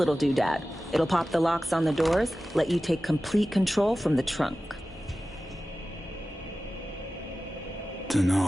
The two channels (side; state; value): both; normal; correlation 0.95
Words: doodad. It'll pop the locks on the doors, let you take complete control from the trunk.